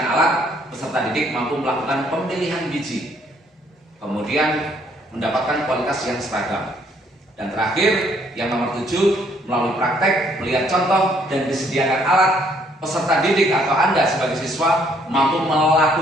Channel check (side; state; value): both; normal; correlation 0.66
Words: alat, peserta didik mampu melakukan pemilihan biji. Kemudian mendapatkan kualitas yang seragam. Dan terakhir, yang nomor 7, melalui praktek, melihat contoh, dan disediakan alat, peserta didik atau Anda sebagai siswa mampu